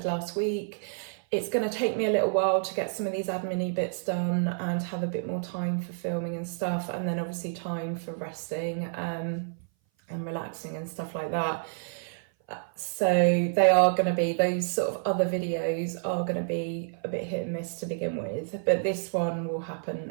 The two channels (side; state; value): left; silent; 57 dB below the other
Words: last week, it's going to take me a little while to get some of these admin-y bits done and have a bit more time for filming and stuff, and then obviously time for resting and relaxing and stuff like that. So they are going to be, those sort of other videos are going to be a bit hit and miss to begin with, but this one will